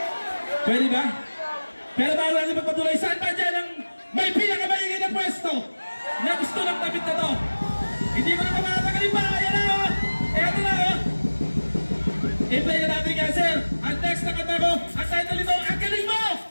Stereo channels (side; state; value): both; inverted; correlation -1.00